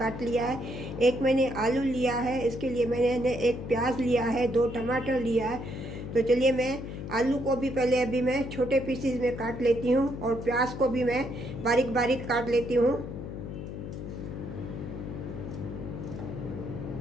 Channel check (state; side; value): noise; left; hum, 8 dB below the sound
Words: लिया है। एक मैंने आलू लिया है, इसके लिए मैंने एक प्याज लिया है, 2 टमाटर लिया है। तो चलिए मैं आलू को भी पहले अभी मैं छोटे पीसीज में काट लेती हूँ और प्याज को भी मैं बारीक बारीक काट लेती हूँ।